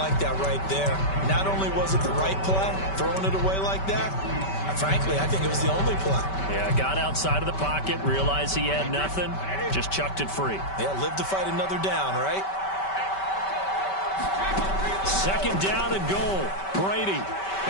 that right there. Not only was it the right play, throwing it away like that, frankly, I think it was the only play. Yeah, got outside of the pocket, realized he had nothing, just chucked it free. Yeah, live to fight another down, right? second down and goal. Brady.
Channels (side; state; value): right; late; 5.2 ms